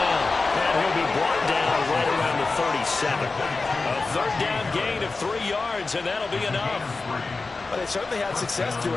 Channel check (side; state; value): right; quieter; 3.8 dB